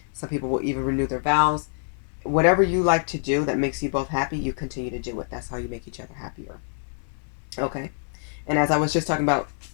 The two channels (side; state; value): right; silent; 61 dB below the other